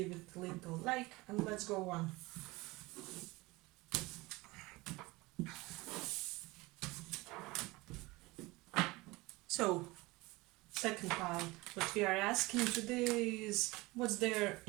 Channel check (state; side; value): quieter; left; 22.2 dB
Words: it a little like, and let's go on. So second pile. What we are asking today is what's their